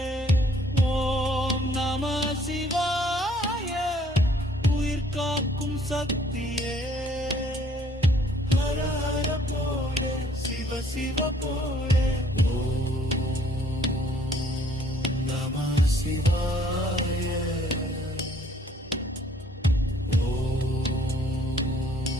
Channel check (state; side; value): normal; both; correlation 0.61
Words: ஓம் நம சிவாய. உயிர் காக்கும் சக்தியே. ஹர ஹர போலே சிவ சிவ போலே. ஓம் நம சிவாய.